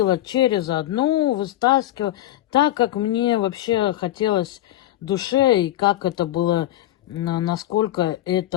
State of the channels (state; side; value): quieter; right; 14.1 dB